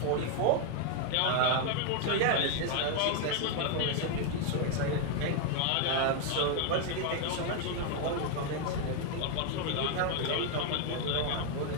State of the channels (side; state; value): both; different; correlation 0.01